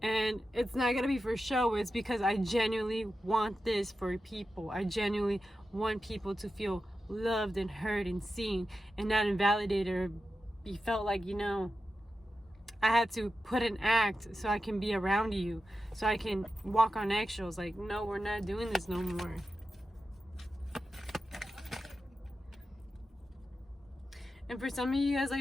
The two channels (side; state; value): both; normal; correlation 0.91